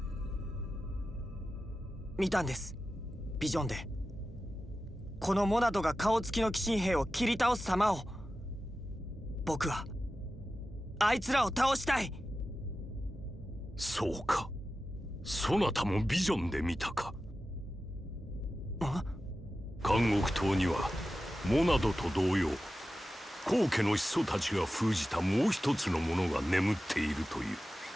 見たんです、ビジョンで。このモナドが顔つきの鬼神兵を切り倒す様を。僕はあいつらを倒したい。そうか、そなたもビジョンで見たか。監獄島にはモナドと同様高家の始祖たちが封じたもう一つのものが眠っているという。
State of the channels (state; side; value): normal; both; correlation 0.93